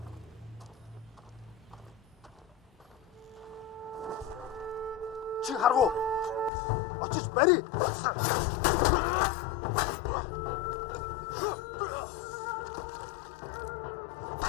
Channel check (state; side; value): drops out; right; at 6.5 s